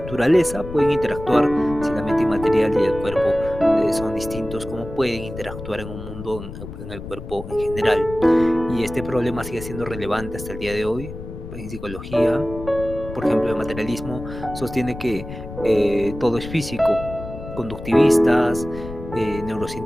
pueden interactuar si la mente inmaterial y el cuerpo son distintos, cómo pueden interactuar en un mundo, en el cuerpo en general. Y este problema sigue siendo relevante hasta el día de hoy. En psicología, por ejemplo, el materialismo sostiene que todo es físico, conductivistas,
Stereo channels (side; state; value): left; noise; rumble, 11 dB below the sound